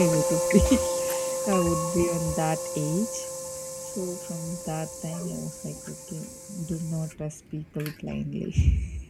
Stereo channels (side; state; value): both; identical; correlation 1.00